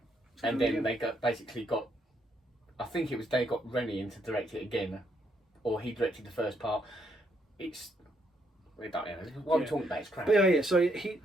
and then again. they got. I think it was they got Rennie in to direct it again, or he directed the first part. It's. We don't know. What I'm talking about is crap. But yeah. So he,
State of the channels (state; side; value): normal; both; correlation 0.74